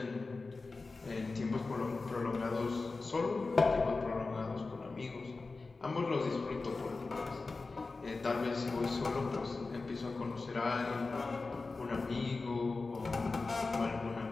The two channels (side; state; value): right; quieter; 3.8 dB